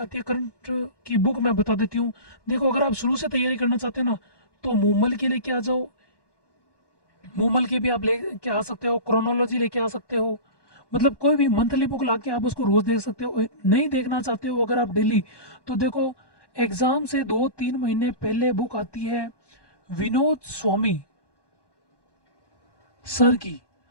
है करंट की बुक मैं बता देती हूँ। देखो अगर आप शुरू से तैयारी करना चाहते हैं ना तो मूमल के लेके आ जाओ, मूमल के भी आप लेके आ सकते हो, क्रोनोलॉजी लेके आ सकते हो, मतलब कोई भी मंथली बुक ला के आप उसको रोज देख सकते हो। नहीं देखना चाहते हो अगर आप डेली, तो देखो एग्जाम से 2-3 महीने पहले बुक आती है विनोद स्वामी सर की,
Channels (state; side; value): late; right; 1.1 ms